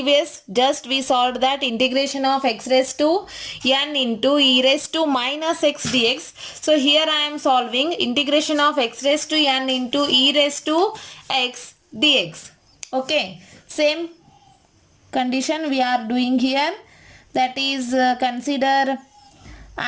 just we solved that integration of x raised to n into e raised to minus x dx. So here I am solving integration of x raised to n into e raised to x dx. Okay, same condition we are doing here, that is consider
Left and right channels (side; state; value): both; identical; correlation 1.00